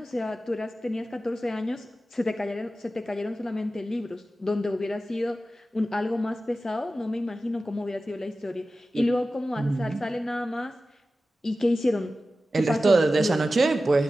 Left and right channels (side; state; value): both; normal; correlation 0.94